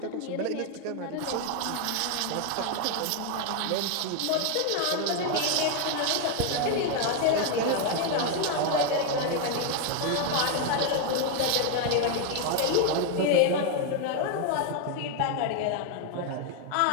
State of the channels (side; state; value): both; different; correlation 0.01